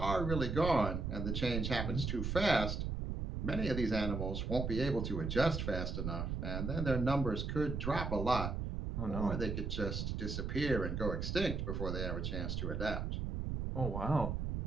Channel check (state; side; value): noise; right; rumble, 2 dB below the sound